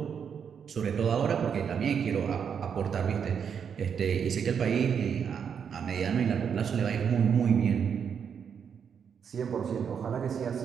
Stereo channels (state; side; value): quieter; left; 7.3 dB